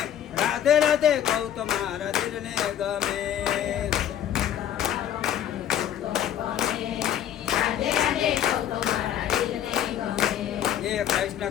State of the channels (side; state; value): right; quieter; 10.5 dB